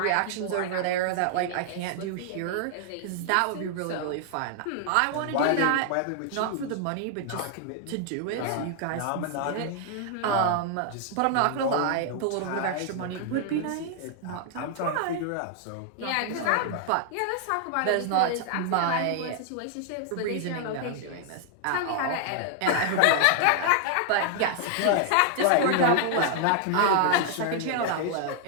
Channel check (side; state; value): both; different; correlation 0.00